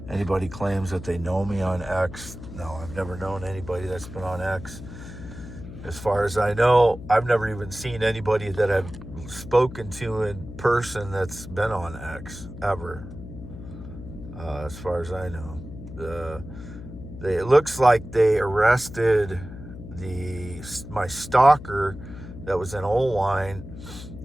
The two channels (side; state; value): left; noise; hum, 13 dB below the sound